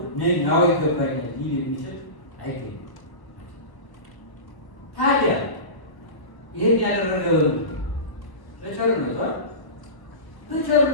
ነኝ አዎ ይገባኛል ሊል የሚችል አይገኝም። ታዲያ ይህን ያደረገው በቸርነቱ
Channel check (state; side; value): late; right; 1.0 ms